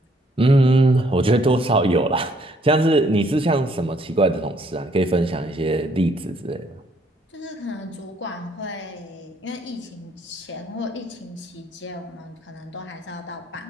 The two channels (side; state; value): both; normal; correlation 0.67